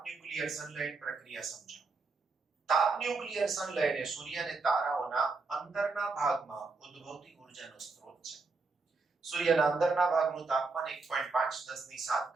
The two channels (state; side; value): quieter; left; 4.0 dB